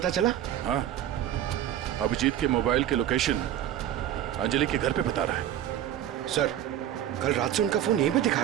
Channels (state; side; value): quieter; left; 11.4 dB